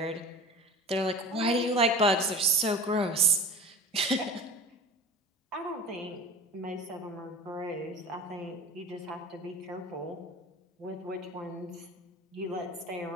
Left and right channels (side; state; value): both; normal; correlation 0.36